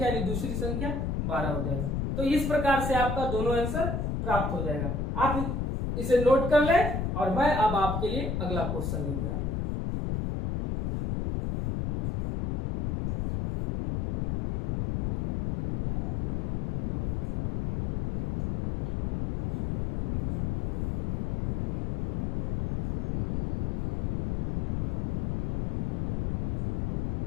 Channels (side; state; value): left; noise; rumble, 2 dB below the sound